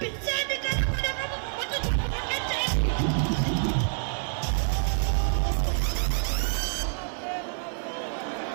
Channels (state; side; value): silent; left; 60 dB below the other